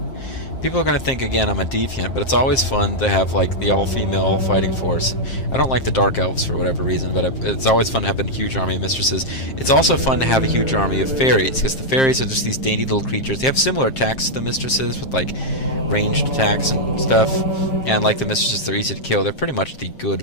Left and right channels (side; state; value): right; late; 7.5 ms